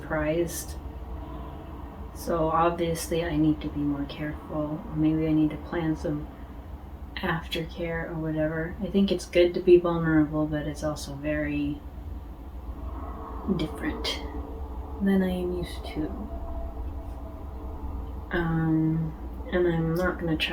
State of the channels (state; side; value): identical; both; correlation 1.00